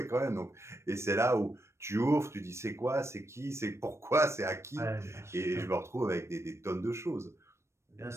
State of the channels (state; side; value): late; left; 0.13 ms